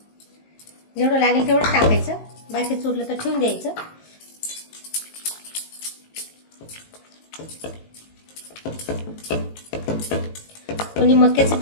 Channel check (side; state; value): right; late; 19 ms